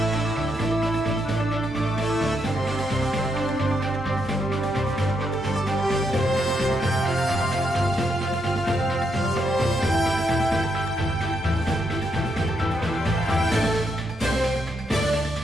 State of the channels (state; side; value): normal; both; correlation 0.79